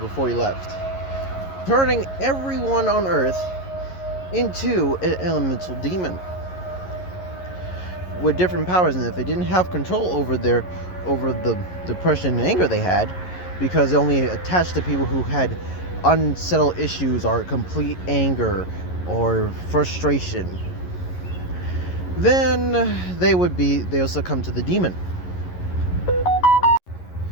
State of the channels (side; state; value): right; late; 11 ms